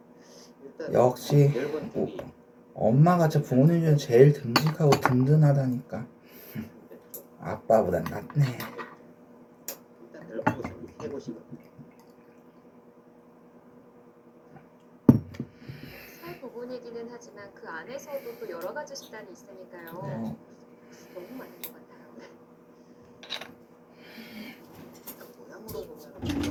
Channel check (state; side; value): identical; both; correlation 1.00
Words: 역시 엄마가 저 부모님 중에 제일 듬직하고 든든하다니까. 아빠보단 낫네. 살 부분이기는 하지만 그 안에서도 또 여러 가지 식단이 있으니까요. 너무 많은 것 같아요. 모양으로 보면